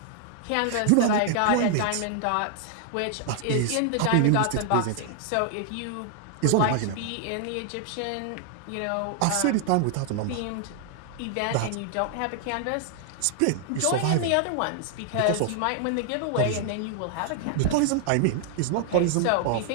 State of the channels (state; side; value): different; both; correlation 0.00